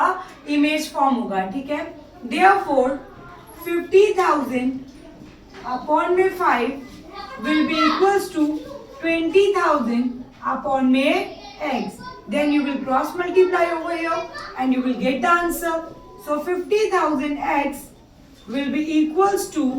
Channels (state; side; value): identical; both; correlation 1.00